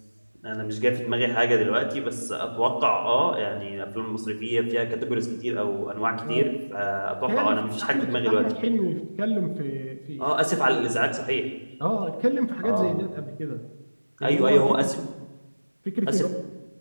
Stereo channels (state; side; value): inverted; both; correlation -1.00